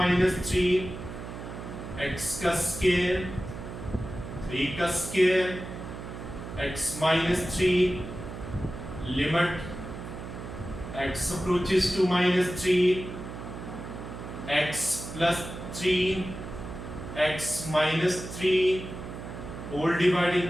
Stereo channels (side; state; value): right; noise; hum, 9 dB below the sound